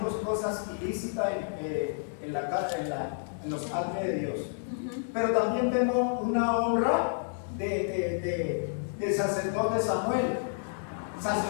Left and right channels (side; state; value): right; silent; digital silence